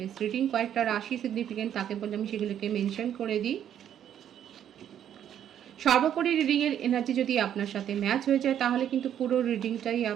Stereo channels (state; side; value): quieter; left; 10.0 dB